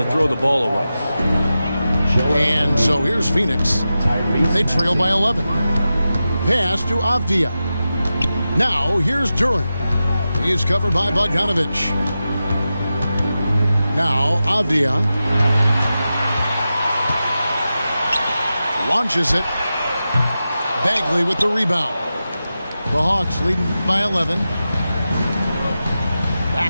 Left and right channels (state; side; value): inverted; both; correlation -0.92